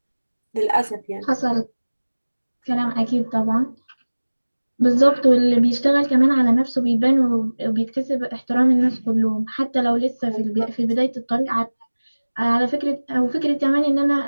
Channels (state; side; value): inverted; both; correlation -1.00